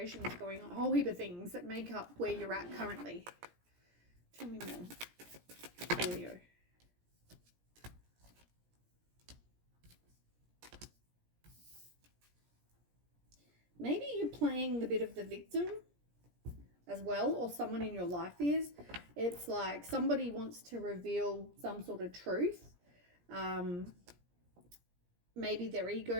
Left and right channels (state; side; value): late; left; 17 ms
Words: going on, a whole heap of things that make up where you're at currently. Tell me more, Leo. Maybe you're playing the bit of the victim as well, or someone in your life is. It's like somebody wants to reveal some sort of truth. Maybe their